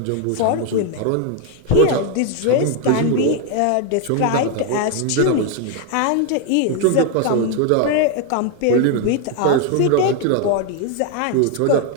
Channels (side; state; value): both; different; correlation 0.01